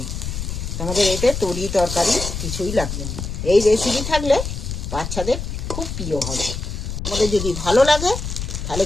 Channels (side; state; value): left; noise; rumble, 5 dB below the sound